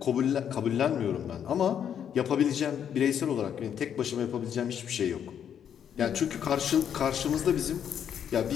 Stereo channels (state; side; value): quieter; right; 8.7 dB